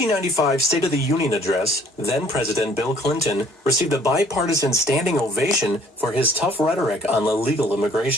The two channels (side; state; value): both; normal; correlation 0.58